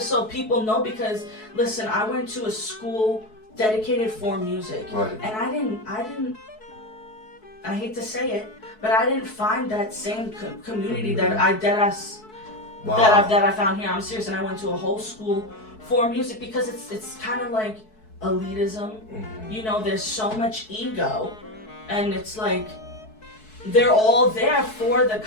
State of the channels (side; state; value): right; late; 4.6 ms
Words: so people know, because listen, I went to a school dedicated for music. Right. And I hate to say it, but I didn't find that same community that I found here. I'm serious, and I went to a whole school for music, because it's kind of like elitism. There's so much ego, and it's like they're all there for the